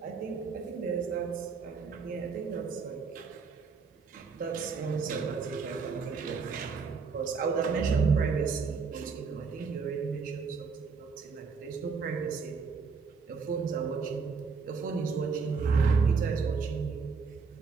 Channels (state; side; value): quieter; left; 5.2 dB